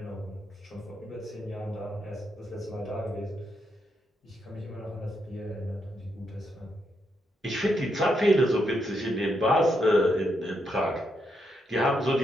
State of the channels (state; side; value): normal; both; correlation 0.80